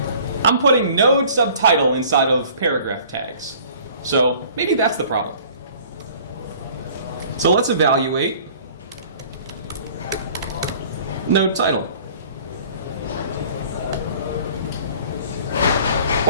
I'm putting node subtitle inside of paragraph tags. So maybe that's the problem. So let's evaluate node title.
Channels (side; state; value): both; inverted; correlation -0.50